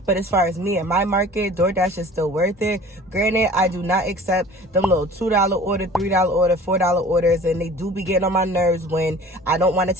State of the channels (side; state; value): both; normal; correlation 0.45